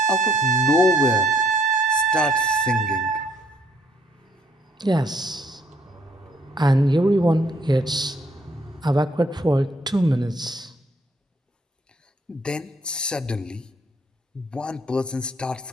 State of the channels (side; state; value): both; normal; correlation 0.67